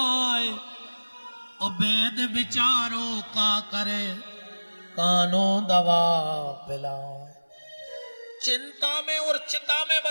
और वेद विचारो का करे कानो दवा पिलाए। चिंता में और चिता में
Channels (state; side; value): inverted; both; correlation -1.00